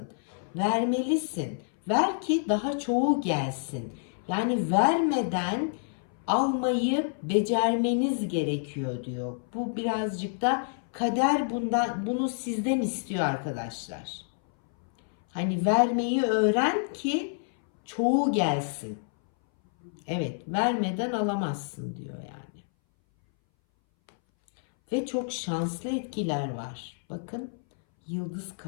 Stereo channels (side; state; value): right; silent; 59 dB below the other